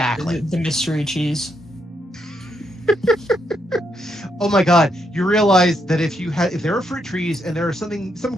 The mystery cheese. Oh my God! You realize that if there are fruit trees and there is some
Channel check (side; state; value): both; normal; correlation 0.78